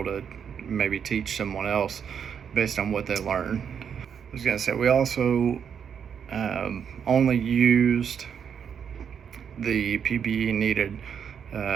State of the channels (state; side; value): quieter; left; 7.5 dB